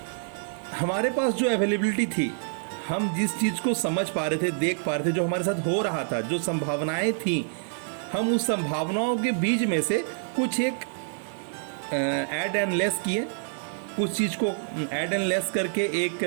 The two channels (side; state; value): left; silent; digital silence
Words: हमारे पास जो अवेलेबिलिटी थी, हम जिस चीज़ को समझ पा रहे थे, देख पा रहे थे, जो हमारे साथ हो रहा था, जो संभावनाएं थी, हम उस संभावनाओं के बीच में से कुछ एक ऐड एंड लेस किए, कुछ चीज़ को ऐड एंड लेस करके एक